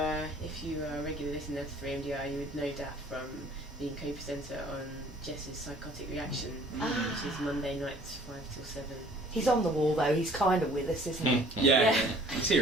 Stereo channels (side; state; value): both; normal; correlation 0.54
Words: if you are a regular listener to 3MDI, you would know Dap from being co-presenter on Jess's Psychotic Reaction, which is Monday nights 5 till 7. He's on the wall though, he's kind of with us, isn't he? Yeah. He's